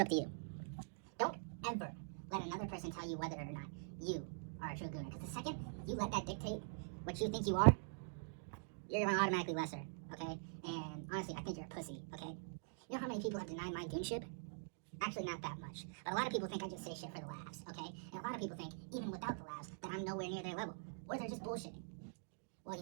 up to you. Don't ever let another person tell you whether or not you are a true gooner. Because the second you let that dictate what you think you are, you're going to automatically lesser, okay? And honestly, I think you're a pussy, okay? You know how many people have denied my goonship? Actually, not that much. But a lot of people think I just say shit for the laughs, okay? And a lot of people think, even without the laughs, that I'm nowhere near their level. Or they're just bullshitting. Well,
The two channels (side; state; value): left; silent; digital silence